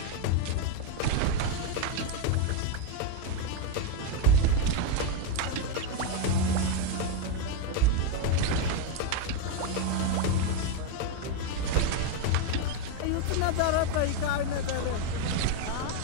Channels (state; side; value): different; both; correlation 0.02